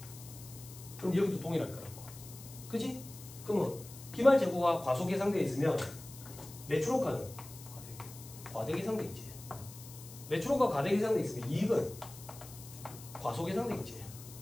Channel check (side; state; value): left; noise; hiss, 16 dB below the sound